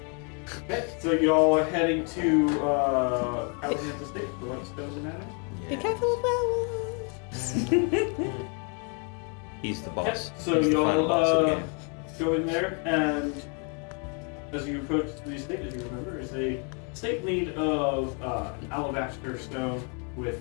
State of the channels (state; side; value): quieter; right; 38.3 dB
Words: Okay, so y'all are heading to Callahan's estate for what spells matter? Be careful of werewolves. He's the boss. So He's the final y'all boss of the game. go in there, and as you approach the estate, as you remember, is a estate made of alabaster stone